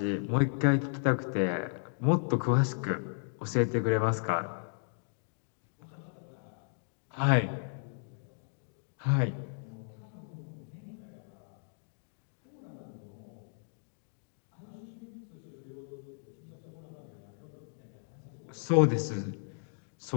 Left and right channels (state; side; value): silent; right; digital silence